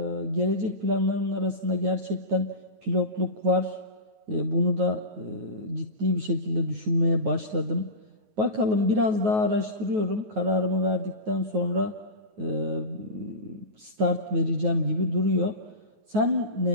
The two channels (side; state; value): left; late; 9.4 ms